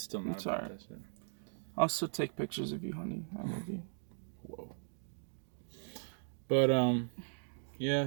not about that shit. I'll still take pictures of you, honey. I love you. Whoa. But, yeah,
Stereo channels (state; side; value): silent; left; digital silence